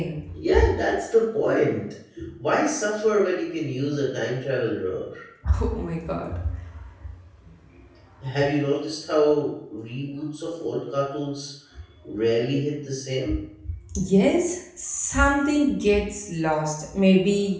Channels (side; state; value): both; identical; correlation 1.00